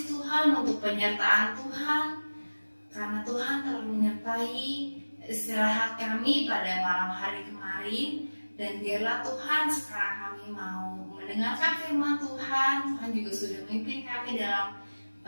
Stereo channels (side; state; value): both; inverted; correlation -1.00